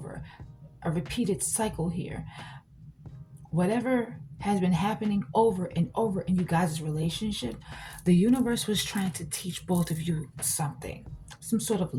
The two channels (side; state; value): both; identical; correlation 1.00